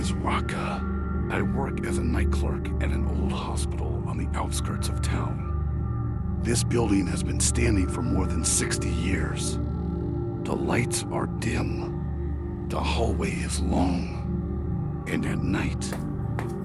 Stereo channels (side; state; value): both; identical; correlation 1.00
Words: Raka. I work as a night clerk at an old hospital on the outskirts of town. This building has been standing for more than 60 years. The lights are dim. The hallway is long. And at night,